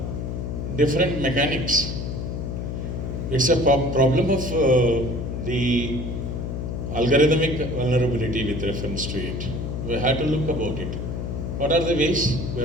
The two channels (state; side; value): noise; left; hum, 4 dB below the sound